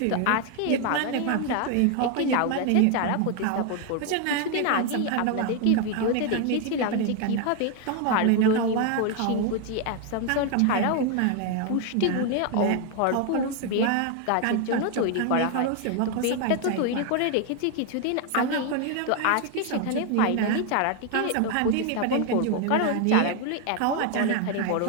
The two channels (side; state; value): both; different; correlation 0.01